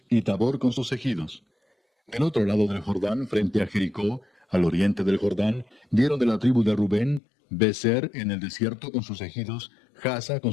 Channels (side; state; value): right; drops out; at 7.2 s